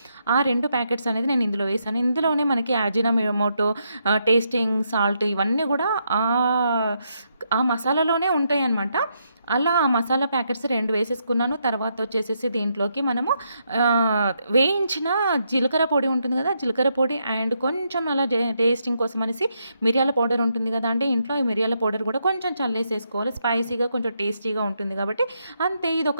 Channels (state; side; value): inverted; both; correlation -0.79